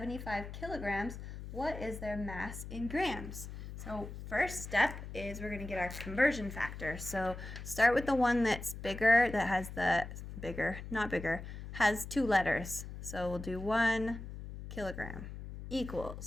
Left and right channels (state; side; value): noise; left; hum, 10 dB below the sound